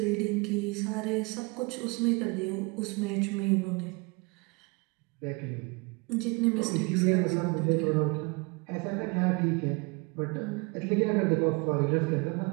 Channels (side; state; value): left; quieter; 28.9 dB